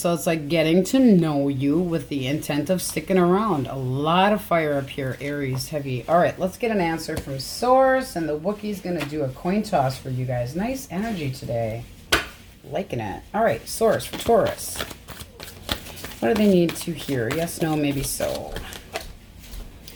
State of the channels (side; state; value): both; identical; correlation 1.00